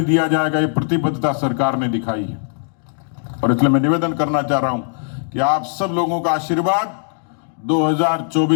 दिया जाएगा। ये प्रतिबद्धता सरकार ने दिखाई है और इसलिए मैं निवेदन करना चाह रहा हूं कि आप सब लोगों का आशीर्वाद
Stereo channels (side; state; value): right; silent; digital silence